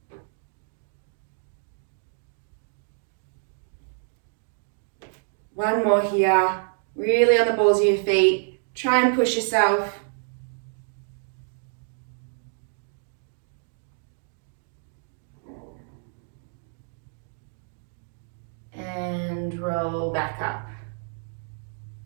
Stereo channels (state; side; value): silent; left; digital silence